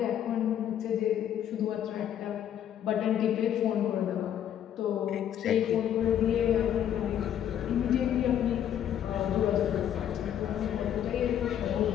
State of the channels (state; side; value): quieter; right; 10.1 dB